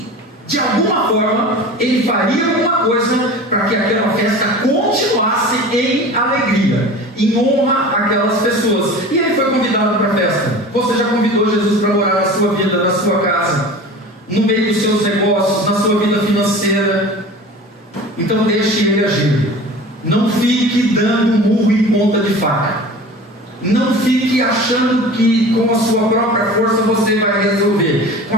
de alguma forma, ele faria alguma coisa para que aquela festa continuasse em alegria, em honra àquelas pessoas. E ele foi convidado para a festa. Você já convidou Jesus para morar na sua vida, na sua casa, no meio dos seus negócios, na sua vida financeira. Então deixe ele agir. Não fique dando murro em ponta de faca. Não fique achando que com a sua própria força você vai resolver. Com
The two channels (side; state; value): both; normal; correlation 0.37